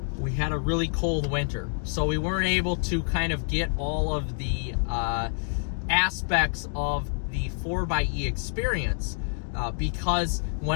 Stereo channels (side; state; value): right; silent; 60 dB below the other